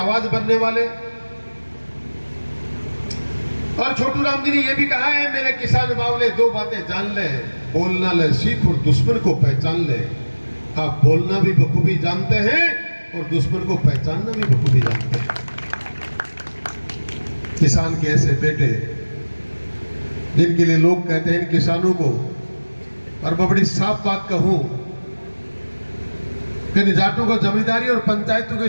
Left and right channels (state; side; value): inverted; both; correlation -1.00